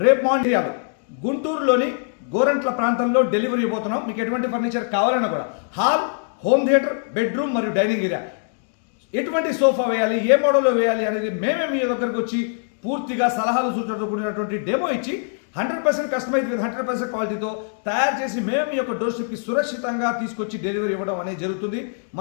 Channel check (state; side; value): silent; right; digital silence